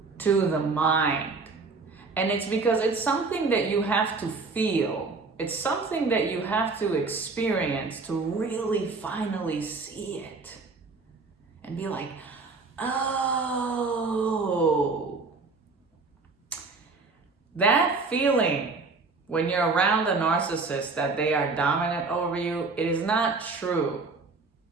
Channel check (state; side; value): quieter; left; 4.1 dB